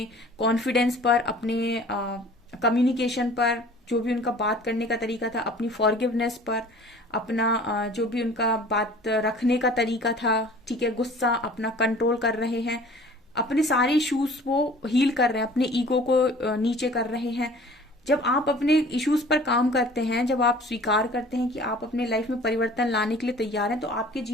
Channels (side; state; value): both; normal; correlation 0.47